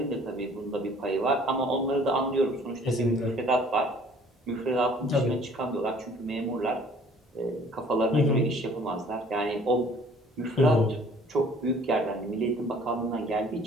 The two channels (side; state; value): both; normal; correlation 0.54